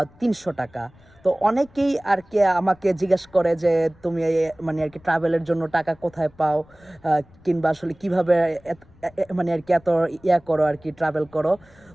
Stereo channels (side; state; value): left; noise; rumble, 27 dB below the sound